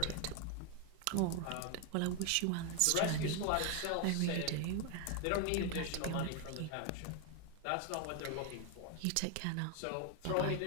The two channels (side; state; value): both; different; correlation 0.01